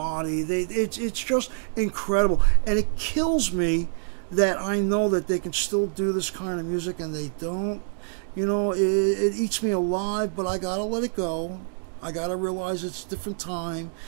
It's just incredible, and it kills me that I know that they can still do this kind of music and they don't. It eats me alive, but I gotta let it go. I gotta realize it's a different time,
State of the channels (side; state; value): left; silent; digital silence